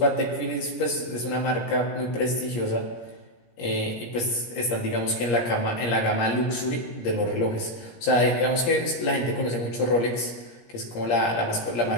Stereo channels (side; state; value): right; late; 17 ms